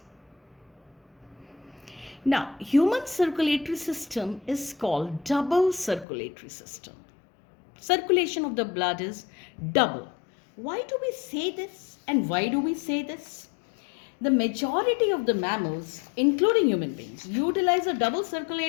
Now, human circulatory system is called double circulatory system. Circulation of the blood is double. Why do we say this, and why do we say this? The majority of the mammals, including human beings, utilize a double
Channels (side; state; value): right; drops out; at 6.1 s